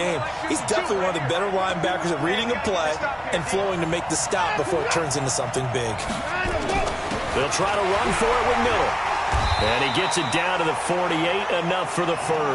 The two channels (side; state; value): both; identical; correlation 1.00